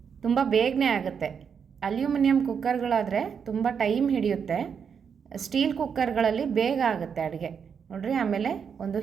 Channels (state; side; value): quieter; left; 6.8 dB